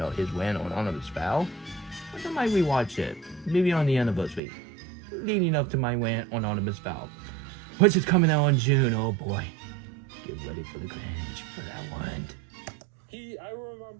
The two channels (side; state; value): left; drops out; at 4.4 s